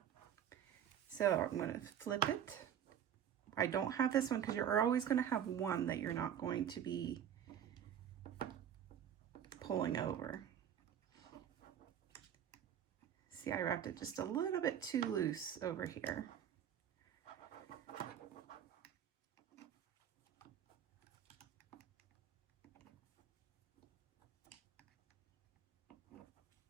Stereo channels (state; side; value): quieter; left; 9.4 dB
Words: So I'm going to flip it. I don't have this one because you're always going to have one that you're not going to be pulling over. See, I wrapped it just a little bit too loose over here.